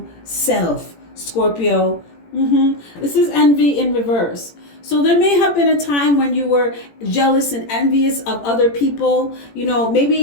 self, Scorpio. This is envy in reverse. So there may have been a time when you were jealous and envious of other people. You know,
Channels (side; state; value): right; late; 18 ms